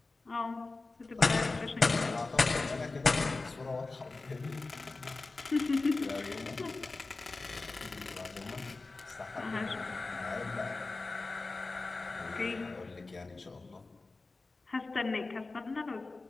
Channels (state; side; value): quieter; right; 3.5 dB